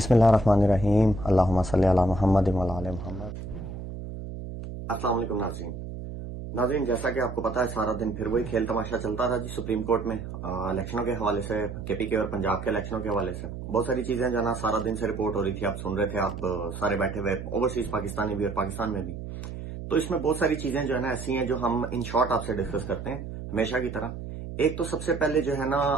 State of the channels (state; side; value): noise; right; hum, 9 dB below the sound